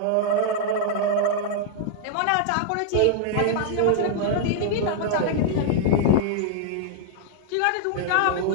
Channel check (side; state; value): both; different; correlation -0.01